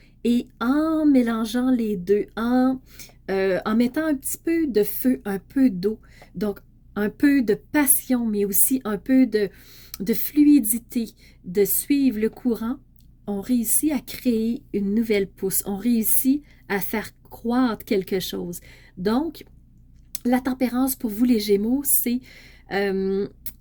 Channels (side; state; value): both; identical; correlation 1.00